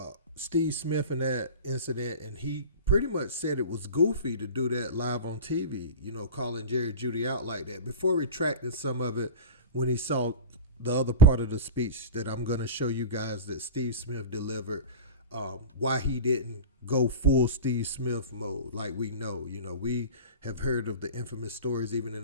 Steve Smith and that incident, and he pretty much said it was goofy to do that live on TV, calling Jerry Jeudy out like that, before retracting some of it when he saw the other part of the speech that I'm going to show you guys that Steve Smith delivered, why he didn't go full Steve Smith mode like we know. We have heard of the infamous stories even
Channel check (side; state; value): both; inverted; correlation -0.30